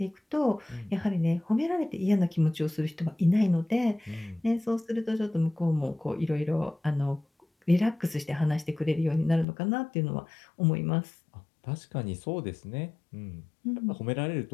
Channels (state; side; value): drops out; right; at 9.5 s